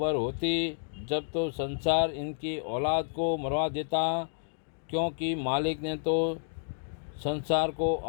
होती जब तो संसार इनकी औलाद को मरवा देता, क्योंकि मालिक ने तो संसार को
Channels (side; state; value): right; silent; digital silence